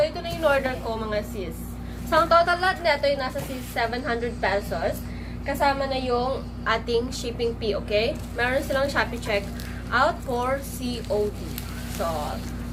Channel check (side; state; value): both; identical; correlation 1.00